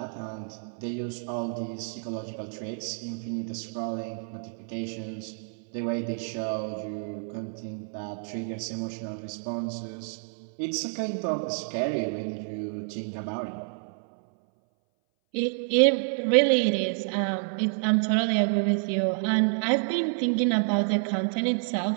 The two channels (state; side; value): silent; left; 59 dB below the other